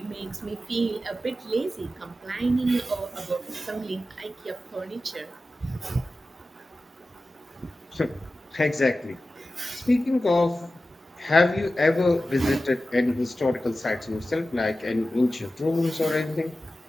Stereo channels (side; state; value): both; normal; correlation 0.94